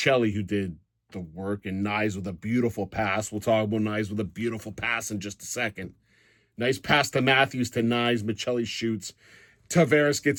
who did the work, and Nyes with a beautiful pass. We'll talk about Nyes with a beautiful pass in just a second. Nice pass to Matthews to Nyes. Michelli shoots. Tavares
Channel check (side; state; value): both; identical; correlation 1.00